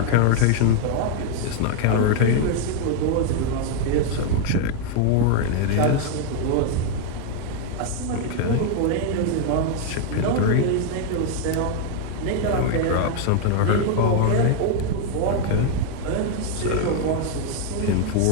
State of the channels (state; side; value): different; both; correlation 0.00